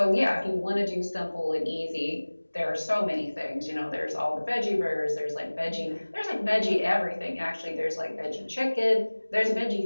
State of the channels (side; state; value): both; inverted; correlation -1.00